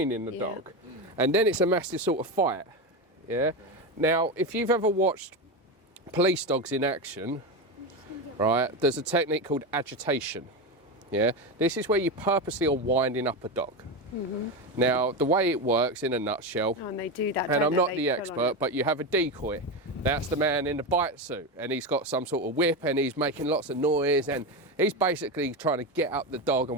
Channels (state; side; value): normal; both; correlation 0.16